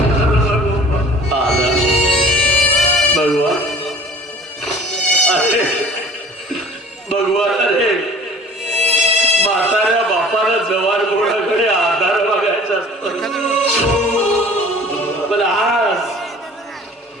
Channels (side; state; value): both; normal; correlation 0.48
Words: भगवान अरे भगवान अरे म्हाताऱ्या बापाला जवान मुलाकडे आधार बघायचा असतो. पण आज